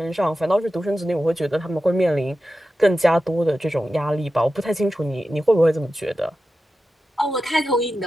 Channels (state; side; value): normal; both; correlation 0.92